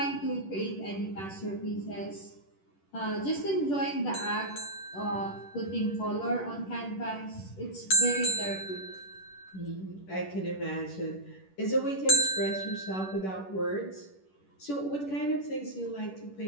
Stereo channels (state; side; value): late; right; 10 ms